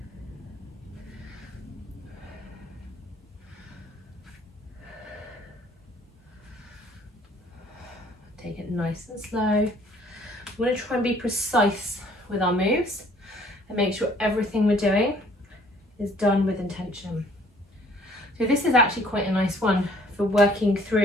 Take it nice and slow. We want to try and be precise with our moves and make sure everything we're doing is done with intention. So this is actually quite a nice one for working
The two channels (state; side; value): normal; both; correlation 0.58